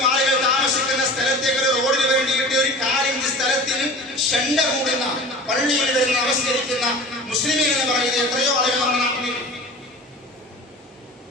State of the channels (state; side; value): normal; both; correlation 0.38